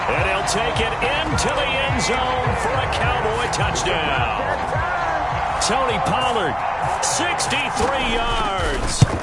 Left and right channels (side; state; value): both; identical; correlation 1.00